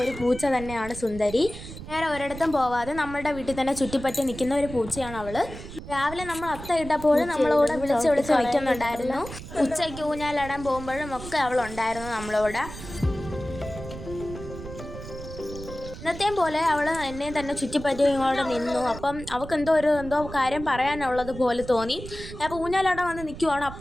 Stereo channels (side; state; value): right; noise; rumble, 12 dB below the sound